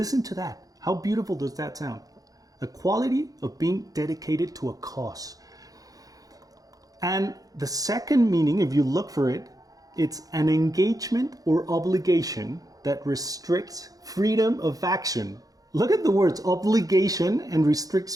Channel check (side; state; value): left; late; 0.17 ms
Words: to that. How beautiful does that sound? A quality of being dedicated to a cause. And the second meaning, if you look for it, it's an engagement or obligation that restricts freedom of action. Look at the words, obligation and restricts